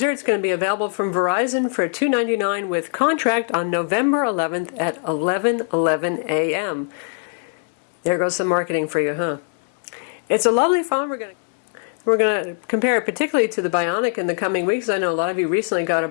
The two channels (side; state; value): right; silent; 60 dB below the other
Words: It's going to be available from Verizon for $299 with contract on November 11th at 11:11 a.m. There goes some marketing for you, huh? It's a lovely phone. We're going to compare it particularly to the Bionic in the coming weeks. I know a lot of you recently got a